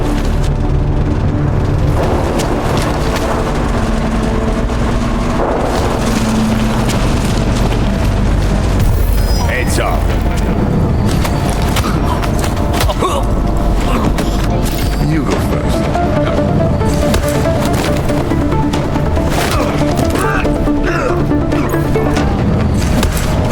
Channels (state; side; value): identical; both; correlation 1.00